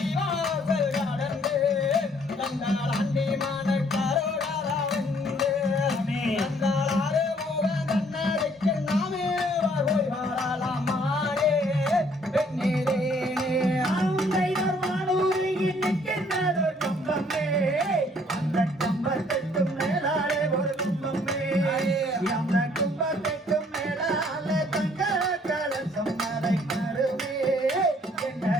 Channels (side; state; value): both; normal; correlation 0.62